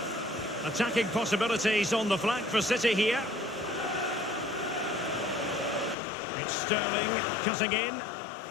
Attacking possibilities on the flank for City here. It's Sterling cutting in.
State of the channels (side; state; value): right; drops out; at 6.0 s